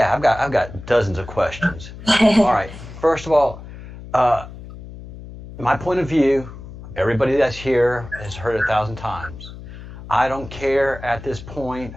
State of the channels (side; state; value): left; noise; hum, 14 dB below the sound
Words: I've got dozens of questions. All right. First of all, my point of view, everybody that's here has heard 1,000 times. I don't care at this point